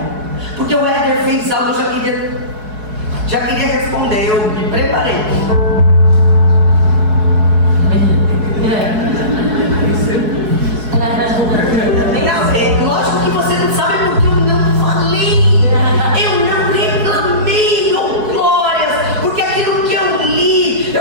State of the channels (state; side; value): late; left; 4.7 ms